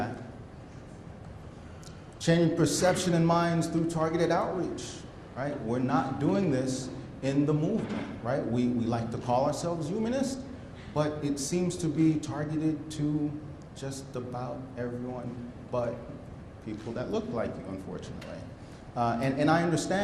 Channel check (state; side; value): identical; both; correlation 1.00